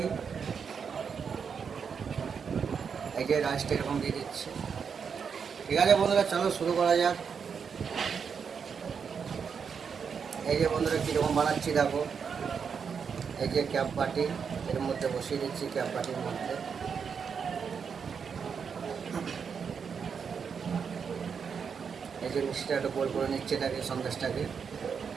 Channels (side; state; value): left; quieter; 6.4 dB